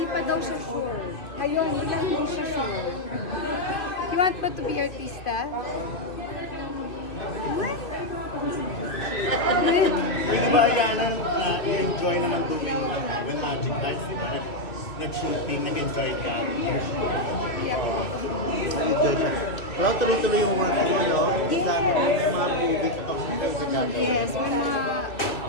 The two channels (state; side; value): late; right; 2.3 ms